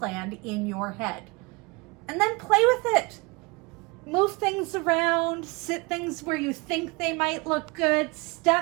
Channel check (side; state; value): left; quieter; 27.2 dB